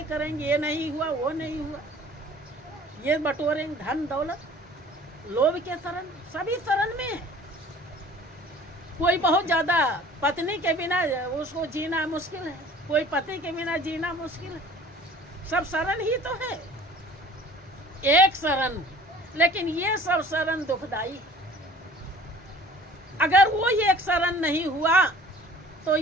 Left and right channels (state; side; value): normal; both; correlation 0.49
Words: करेंगे, ये नहीं हुआ वो नहीं हुआ, ये बटोरेंगे धन दौलत, लोभ के शरण, सभी शरण में है। कोई बहुत ज्यादा पत्नी के बिना उसको जीना मुश्किल है, कोई पति के बिना जीना मुश्किल है। सब शरण ही तो है, एक शरण, लेकिन ये सब शरण दुखदाई है। अगर वो एक शरण नहीं हुआ तो